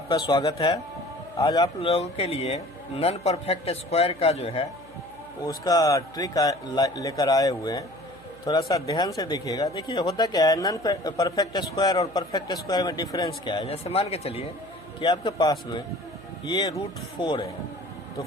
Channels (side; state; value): right; noise; hum, 22 dB below the sound